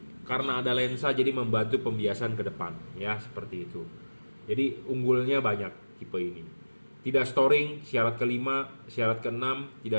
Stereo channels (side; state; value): both; inverted; correlation -1.00